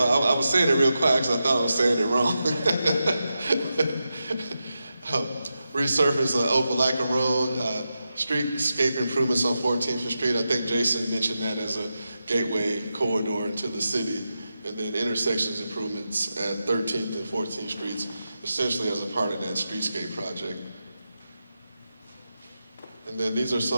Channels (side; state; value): both; inverted; correlation -0.89